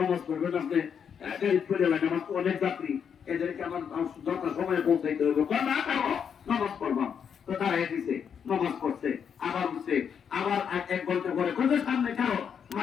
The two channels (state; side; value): quieter; right; 7.4 dB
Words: পড়বেন আপনি, গাড়ি চলে লাগে, আমার তো অনেক যাত্রী, এদেরকে আমার যথা সময় পৌঁছাইতে হবে, না করো নামাজ পড়বাম। তো দাঁড়াই দিছে, নামাজ পড়ছে, আবার উঠছে, আবার 1 ঘন্টা পরে কোথায় সামনে কারো